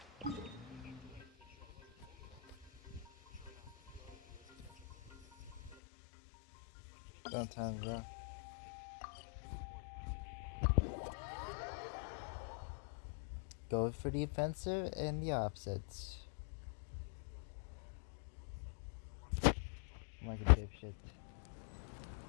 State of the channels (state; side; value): drops out; right; at 5.8 s